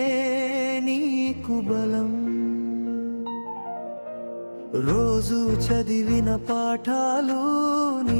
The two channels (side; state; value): both; inverted; correlation -1.00